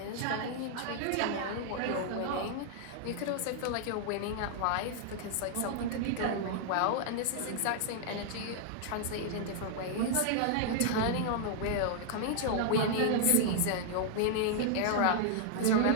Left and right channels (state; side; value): different; both; correlation 0.00